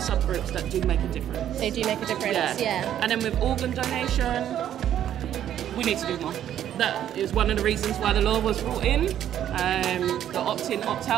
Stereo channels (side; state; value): left; quieter; 10.8 dB